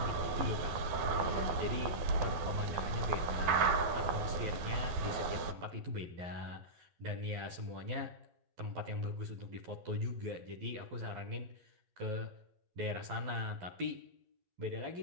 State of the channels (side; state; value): left; late; 12 ms